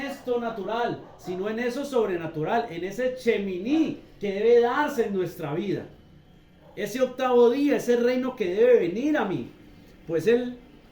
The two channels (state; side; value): identical; both; correlation 1.00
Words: natural, sino en eso sobrenatural, en ese cheminí que debe darse en nuestra vida, ese octavo día, ese reino que debe venir a mí. Pues él,